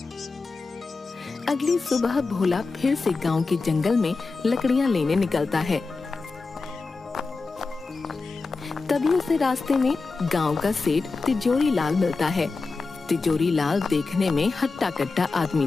अगली सुबह भोला फिर से गांव के जंगल में लकड़ियां लेने निकलता है। तभी उसे रास्ते में गांव का सेठ तिजोरी लाल मिलता है। तिजोरी लाल देखने में हट्टा कट्टा आदमी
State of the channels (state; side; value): quieter; right; 4.0 dB